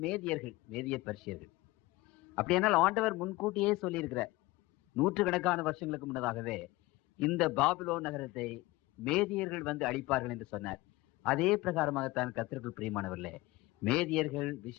மேதியர்கள், மேதிய பர்ஷியர்கள். அப்படியானால் ஆண்டவர் முன்கூட்டியே சொல்லியிருக்கிறார். 100 கணக்கான வருஷங்களுக்கு முன்னதாகவே இந்த பாபிலோன் நகரத்தை மேதியர்கள் வந்து அழிப்பார்கள் என்று சொன்னார். அதே பிரகாரமாகத்தான் கர்த்தருக்குள் பிரியமானவர்களே, மேதியர்கள்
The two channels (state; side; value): quieter; right; 20.2 dB